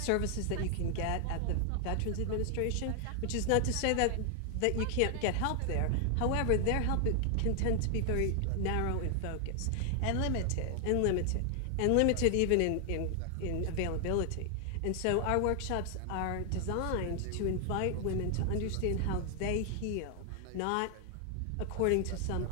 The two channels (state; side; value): different; both; correlation 0.00